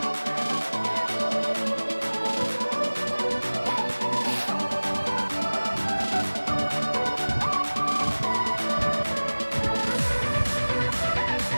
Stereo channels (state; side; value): inverted; both; correlation -1.00